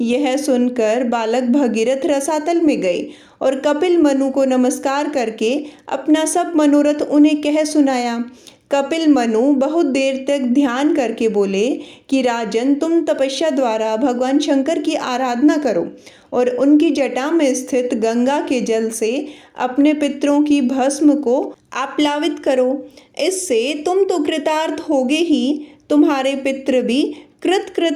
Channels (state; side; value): identical; both; correlation 1.00